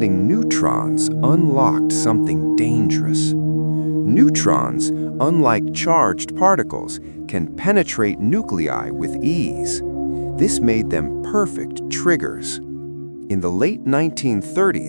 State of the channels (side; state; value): both; inverted; correlation -1.00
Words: neutrons unlocked something dangerous. Neutrons, unlike charged particles, can penetrate nuclei with ease. This made them perfect triggers. In the late